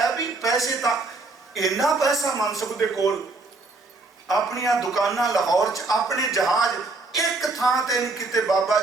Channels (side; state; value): left; quieter; 3.5 dB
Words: भी पैसे तां इन्ना पैसा मनसुख दे कोल, अपनियां दुकानां लाहौर च, अपने जहाज एक थां ते नहीं किते। बाबा